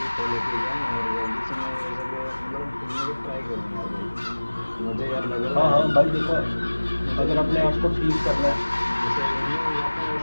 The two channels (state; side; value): inverted; both; correlation -1.00